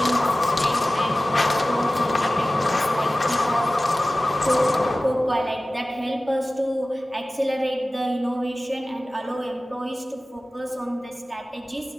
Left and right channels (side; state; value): both; normal; correlation 0.96